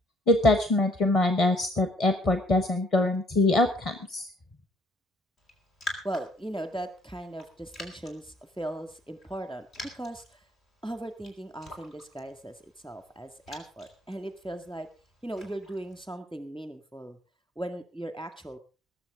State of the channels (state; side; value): normal; both; correlation 0.62